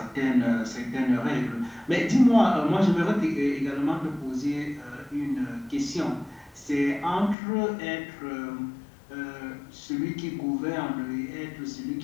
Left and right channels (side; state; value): right; drops out; at 7.4 s